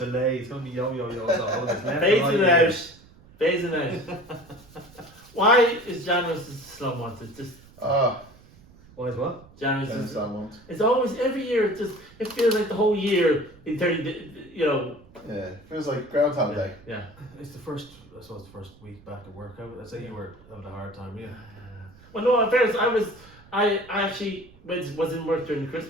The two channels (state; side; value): noise; right; rumble, 24 dB below the sound